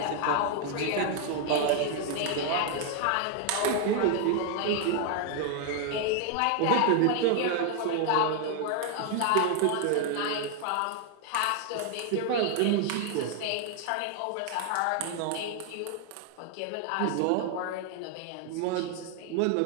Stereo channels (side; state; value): both; different; correlation 0.00